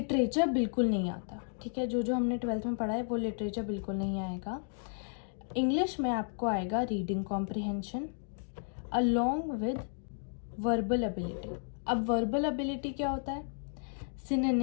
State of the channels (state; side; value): silent; right; digital silence